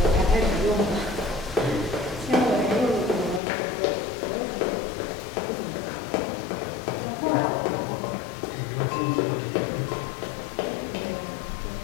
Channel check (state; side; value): drops out; right; at 3.4 s